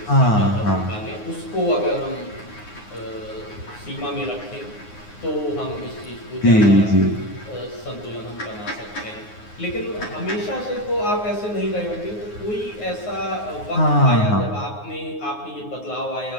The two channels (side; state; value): right; late; 9.5 ms